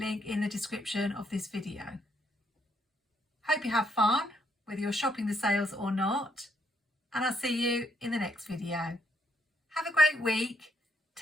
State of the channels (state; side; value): normal; both; correlation 0.74